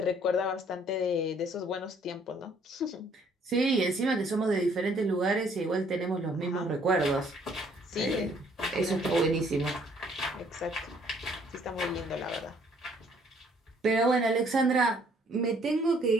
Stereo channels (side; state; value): both; normal; correlation 0.62